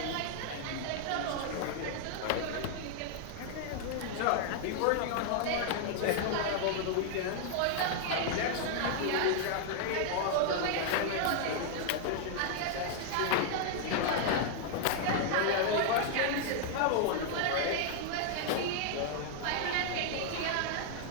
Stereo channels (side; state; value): both; different; correlation 0.00